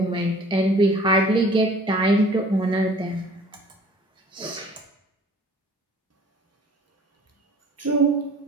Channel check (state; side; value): normal; both; correlation 0.50